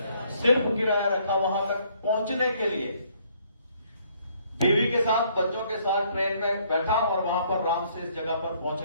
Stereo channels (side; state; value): both; inverted; correlation -0.66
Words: सिर्फ किराया रखा वहां तक पहुंचने के लिए। बीवी के साथ, बच्चों के साथ ट्रेन में बैठा और वहां पर राम से इस जगह पर पहुंच